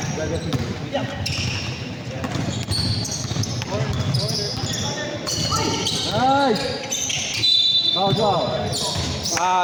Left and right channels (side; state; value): both; identical; correlation 1.00